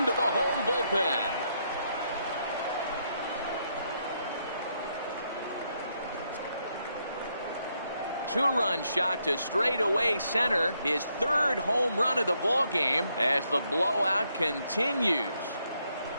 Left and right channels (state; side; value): inverted; both; correlation -0.77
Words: the home bullpen. Two-run shot to straightaway center. His 3rd home run of the ball game as the blowout continues.